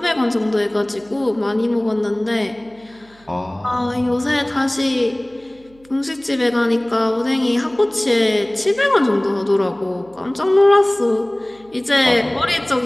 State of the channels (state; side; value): noise; right; hum, 30 dB below the sound